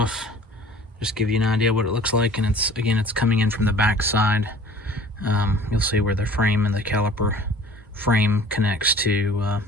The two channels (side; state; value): both; normal; correlation 0.47